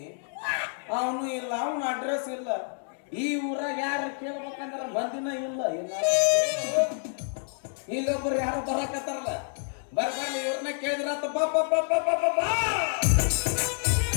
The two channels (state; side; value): silent; right; 59 dB below the other